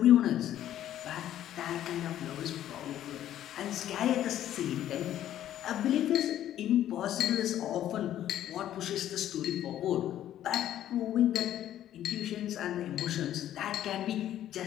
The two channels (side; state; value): right; quieter; 11.9 dB